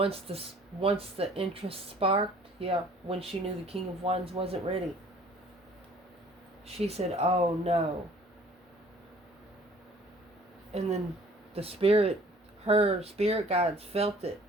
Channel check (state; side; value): normal; both; correlation 0.54